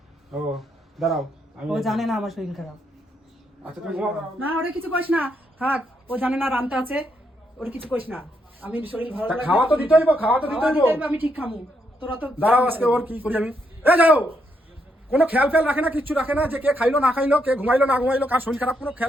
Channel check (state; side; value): normal; both; correlation 0.78